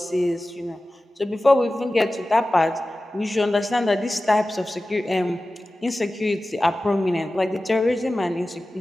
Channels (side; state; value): both; normal; correlation 0.96